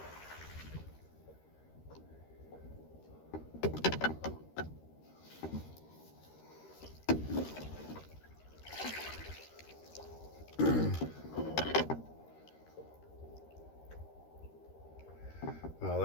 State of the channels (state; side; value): late; right; 13 ms